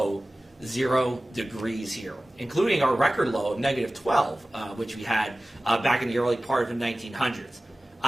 0 degrees here, including our record low of negative 12, which we had back in the early part of the 1900s.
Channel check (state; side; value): normal; both; correlation 0.97